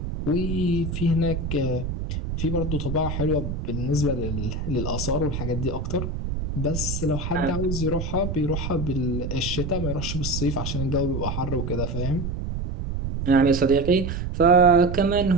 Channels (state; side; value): noise; right; rumble, 4 dB below the sound